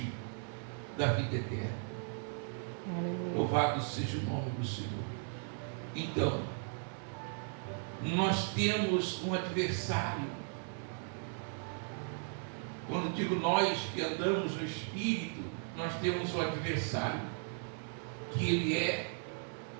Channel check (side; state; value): left; silent; 53 dB below the other